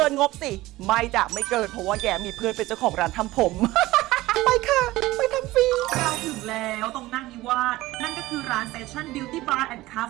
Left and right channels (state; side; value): quieter; left; 18.0 dB